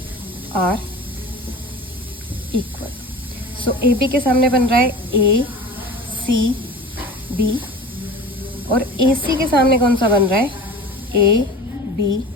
are equal. So AB के सामने बन रहा है ACB और AC के सामने कौन सा बन रहा है,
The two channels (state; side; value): normal; both; correlation 0.37